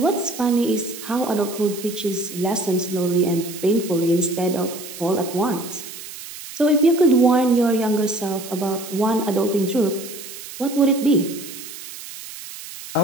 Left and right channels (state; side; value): noise; right; hiss, 13 dB below the sound